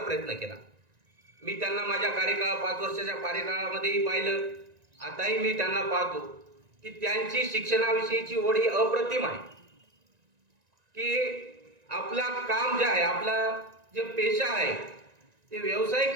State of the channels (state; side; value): late; left; 1.9 ms